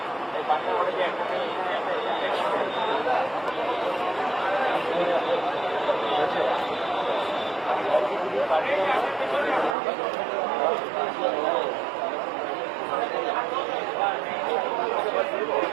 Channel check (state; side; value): drops out; left; at 9.8 s